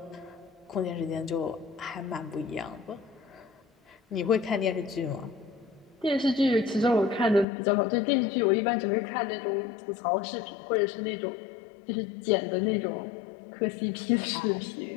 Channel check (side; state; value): right; drops out; at 7.5 s